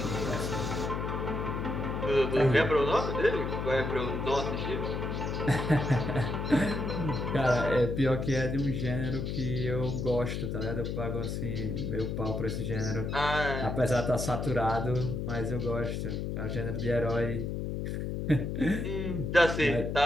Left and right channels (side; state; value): left; noise; hum, 3 dB below the sound